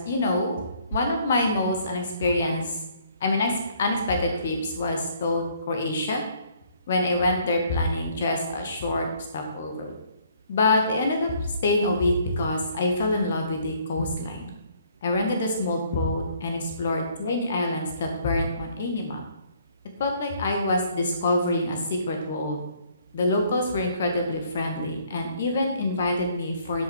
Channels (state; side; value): inverted; both; correlation -0.63